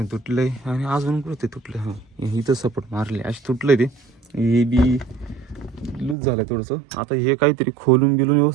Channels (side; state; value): left; drops out; at 6.2 s